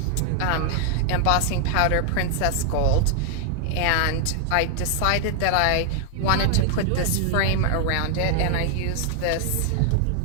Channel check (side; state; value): both; different; correlation 0.00